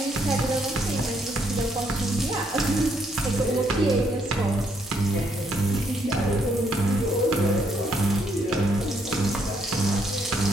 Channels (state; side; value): normal; both; correlation 0.73